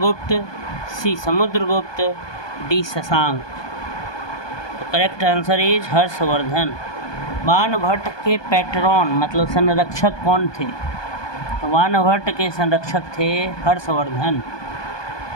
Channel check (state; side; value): late; right; 1.2 ms